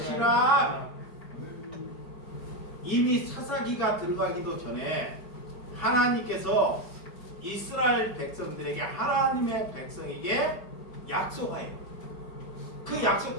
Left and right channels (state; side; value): late; right; 4.9 ms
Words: 이미 사사기가 들어가기도 전에 하나님께서 이스라엘 백성들에게, 하나님의 백성에게 약속해요. 그